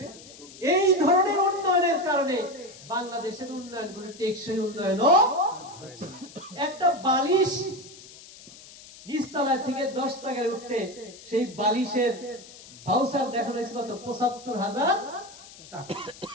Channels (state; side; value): noise; left; hiss, 19 dB below the sound